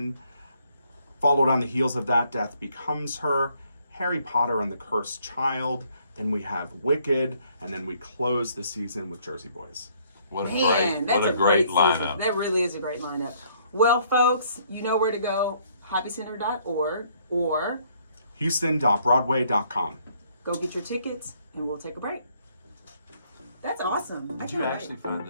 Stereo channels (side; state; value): both; inverted; correlation -0.66